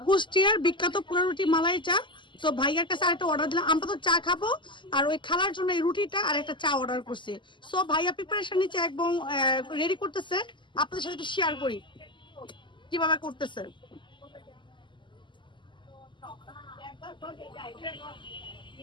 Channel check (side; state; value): right; late; 0.23 ms